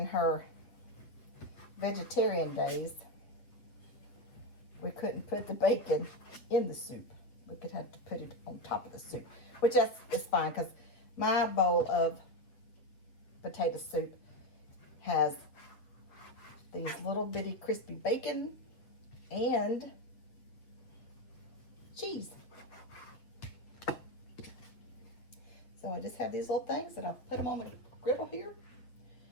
her vegetarian days, we couldn't put the bacon in the soup. We could have to put it on top of the soup, which is fine because my bowl of potato soup has these little bitty crispy bacon and cheese. So I just have these little things and I put them on the griddle here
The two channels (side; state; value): right; late; 8.1 ms